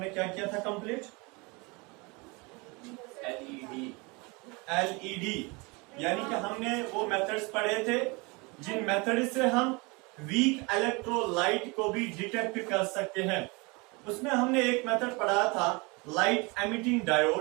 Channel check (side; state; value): left; quieter; 27.8 dB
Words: क्या किया था कंप्लीट? एलईडी यानी कि हमने वो मेथड्स पढ़े थे जिन मेथड से हम वीक इलेक्ट्रोलाइट को भी डिटेक्ट कर सकते हैं। उसमें हमने एक मेथड पढ़ा था लाइट एमिटिंग